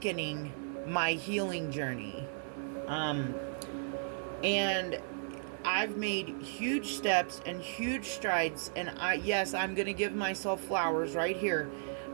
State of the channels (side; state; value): left; silent; 55 dB below the other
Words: my healing journey. And I've made huge steps and huge strides, and I'm going to give myself flowers right here,